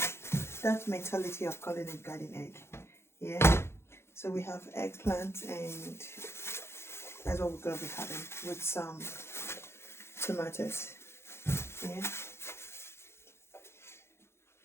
mentality of calling it garden egg. Yeah, so we have eggplant and that's what we're going to be having with some tomatoes. Yeah.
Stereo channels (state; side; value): late; right; 0.12 ms